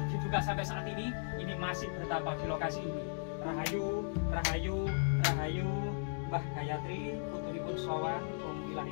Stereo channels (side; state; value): right; silent; digital silence